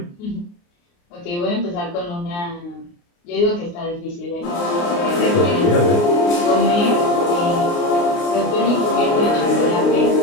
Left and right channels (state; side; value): late; right; 29 ms